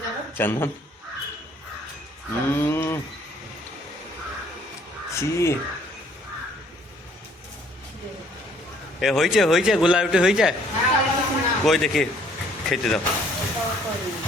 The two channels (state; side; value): normal; both; correlation 0.61